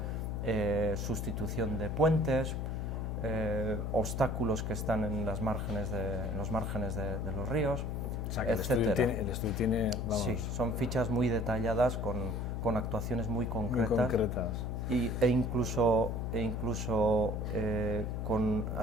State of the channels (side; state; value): left; noise; hum, 2 dB below the sound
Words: sustitución de puentes, obstáculos que están en los márgenes de los ríos, O sea, que el estudio tiene, vamos... Sí, son fichas muy detalladas con actuaciones muy concretas. Muy concretas. E incluso con